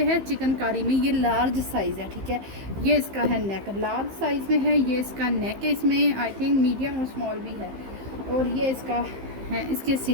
है, चिकनकारी में, ये लार्ज साइज़ है, ठीक है। ये इसका है नेक, लार्ज साइज़ में है, ये इसका नेक है, इसमें आई थिंक मीडियम और स्मॉल भी है। और ये इसका हैं, इसके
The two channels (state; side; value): late; left; 15 ms